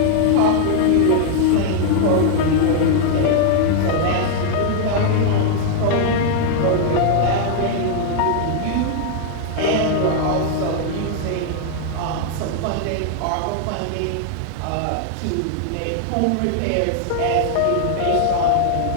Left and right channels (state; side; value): different; both; correlation 0.00